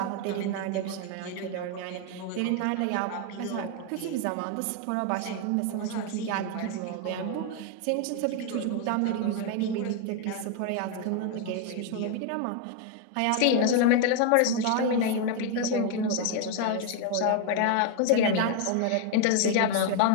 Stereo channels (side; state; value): both; different; correlation 0.01